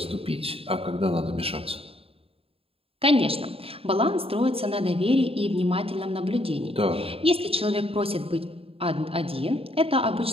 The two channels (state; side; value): late; left; 0.27 ms